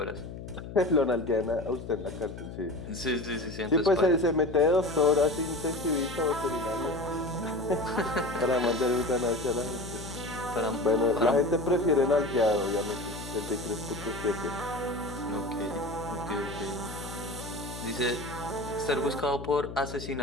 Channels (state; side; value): noise; left; hum, 10 dB below the sound